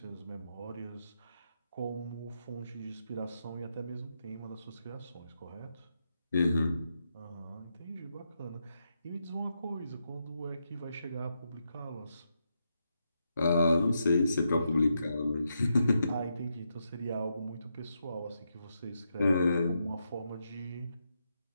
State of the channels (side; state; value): both; inverted; correlation -0.83